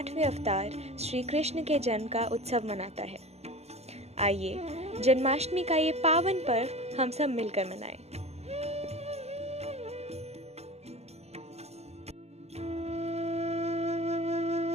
अवतार श्री कृष्ण के जन्म का उत्सव मनाता है। आइए जन्माष्टमी का ये पावन पर्व हम सब मिलकर मनाएं।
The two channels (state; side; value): late; left; 0.31 ms